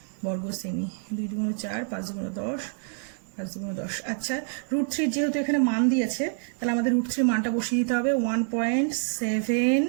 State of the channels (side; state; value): left; silent; 60 dB below the other